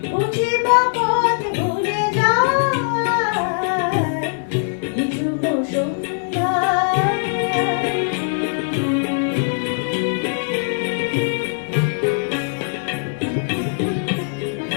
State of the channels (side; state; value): right; silent; digital silence